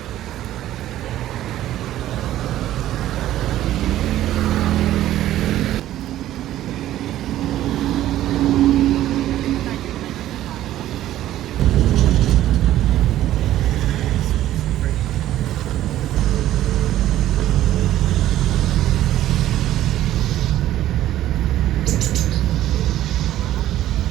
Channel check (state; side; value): quieter; left; 13.4 dB